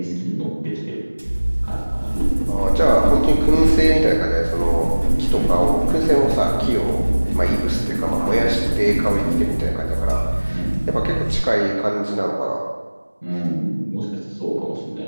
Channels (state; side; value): inverted; both; correlation -1.00